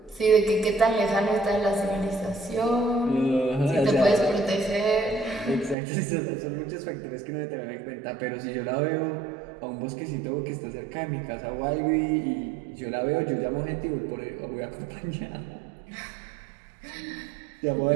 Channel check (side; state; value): left; drops out; at 5.8 s